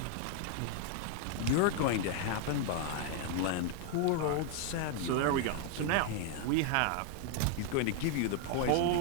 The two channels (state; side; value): different; both; correlation 0.00